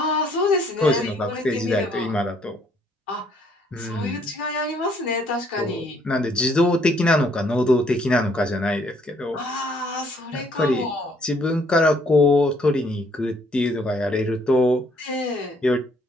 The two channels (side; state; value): both; normal; correlation 0.65